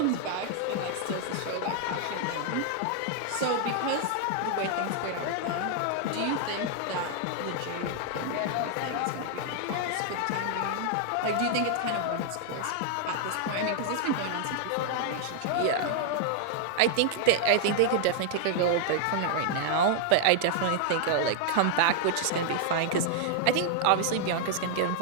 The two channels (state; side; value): different; both; correlation -0.01